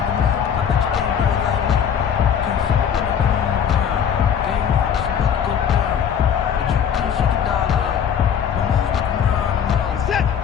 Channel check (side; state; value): right; quieter; 8.1 dB